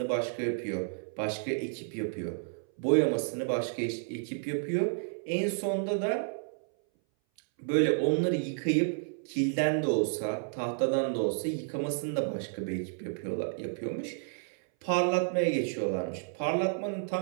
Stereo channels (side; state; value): left; silent; 57 dB below the other